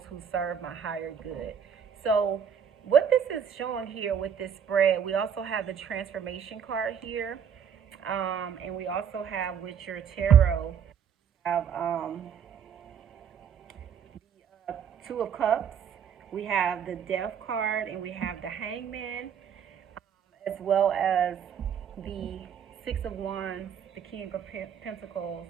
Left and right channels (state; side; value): quieter; left; 7.8 dB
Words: who serve my higher good. So, what this is showing here with this spread, we also have the transformation card here. And we also have with your tarot, have the 2 of Cups. We have the Death card, and we have the Hangman, as well as the 6 of Wands, the King of Pentacles,